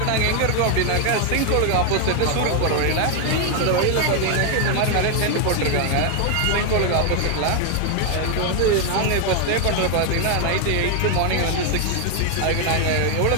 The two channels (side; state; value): both; different; correlation 0.01